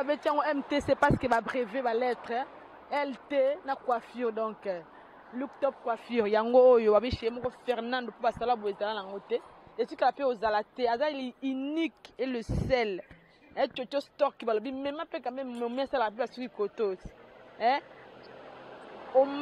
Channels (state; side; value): identical; both; correlation 1.00